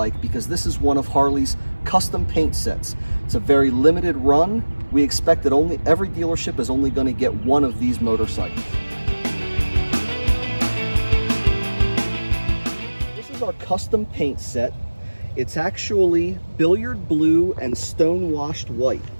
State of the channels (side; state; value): both; inverted; correlation -1.00